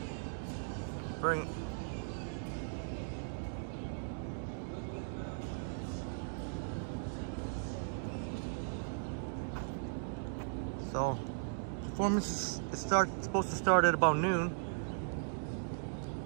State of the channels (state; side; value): silent; left; digital silence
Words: Very. So, performance is supposed to start at about noon.